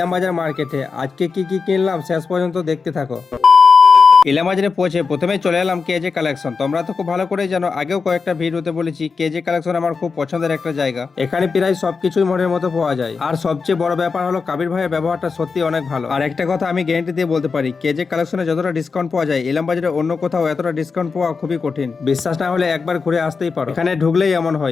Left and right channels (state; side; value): quieter; right; 4.9 dB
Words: মার্কেটে। আজকে কি কি কিনলাম শেষ পর্যন্ত দেখতে থাকো। ইলামবাজারে পৌঁছে প্রথমেই চলে এলাম কেজে কালেকশন। তোমরা তো খুব ভালো করেই জানো, আগেও কয়েকটা ভিডিওতে বলেছি কেজে কালেকশন আমার খুব পছন্দের একটা জায়গা। এখানে প্রায় সবকিছুই মনের মতো পাওয়া যায়। আর সবচেয়ে বড় ব্যাপার হলো কাবির ভাইয়ের ব্যবহারটা সত্যি অনেক ভালো। আর একটা কথা আমি গ্যারান্টি দিয়ে বলতে পারি, কেজে কালেকশনে যতটা ডিসকাউন্ট পাওয়া যায় ইলামবাজারে অন্য কোথাও এতটা ডিসকাউন্ট পাওয়া খুবই কঠিন। বিশ্বাস না হলে একবার ঘুরে আসতেই পারো। এখানে ঢুকলেই এমন